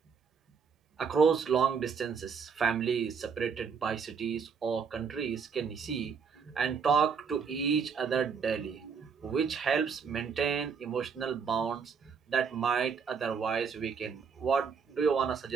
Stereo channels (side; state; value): left; quieter; 6.1 dB